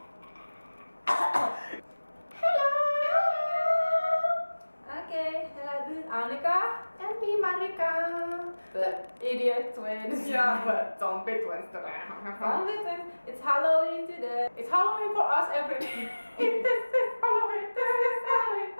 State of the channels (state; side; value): inverted; both; correlation -1.00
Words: hello, this is Annika. And me, Marika. The idiot twins. Yeah, but zombie twins today. Zombie twins. It's Halloween today. It's Halloween for us every day. This is Halloween. This is Halloween.